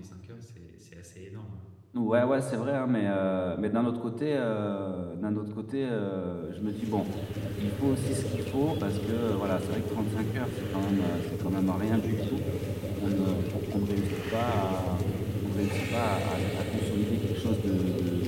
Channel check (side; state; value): both; identical; correlation 1.00